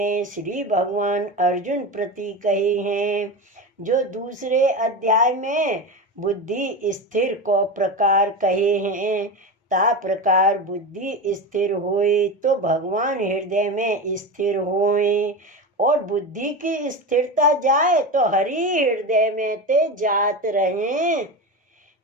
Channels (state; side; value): normal; both; correlation 0.22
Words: श्री भगवान अर्जुन प्रति कहे हैं, जो दूसरे अध्याय में बुद्धि स्थिर को प्रकार कहे हैं, ता प्रकार बुद्धि स्थिर होए तो भगवान हृदय में स्थिर होए, और बुद्धि की स्थिरता जाए तो हरि हृदय में ते जात रहे।